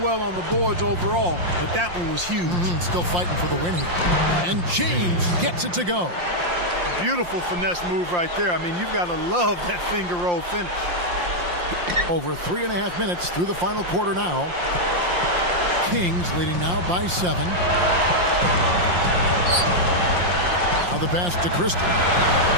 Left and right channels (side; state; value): left; late; 5.7 ms